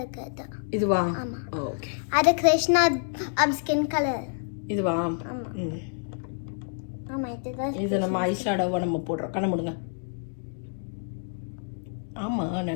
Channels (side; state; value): right; silent; digital silence